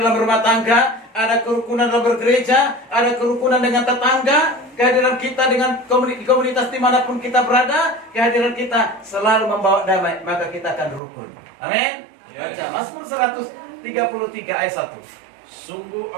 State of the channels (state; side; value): drops out; left; at 11.0 s